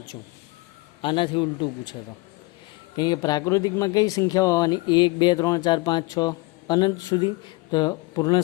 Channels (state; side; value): quieter; right; 23.8 dB